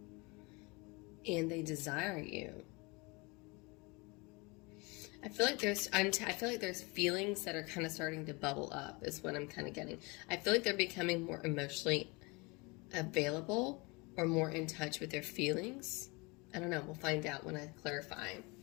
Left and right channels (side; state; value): right; quieter; 27.1 dB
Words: And they desire you. I feel like there's feelings that are kind of starting to bubble up, is what I'm kind of getting. I feel like they're becoming more emotionally available, or more in touch with their feelings. I don't know. We'll find out when I clarify.